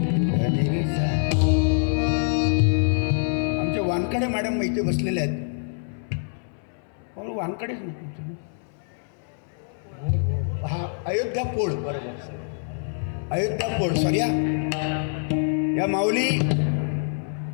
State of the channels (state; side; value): silent; right; 62 dB below the other